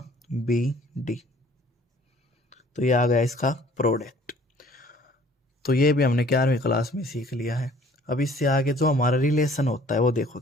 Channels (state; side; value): normal; both; correlation 0.55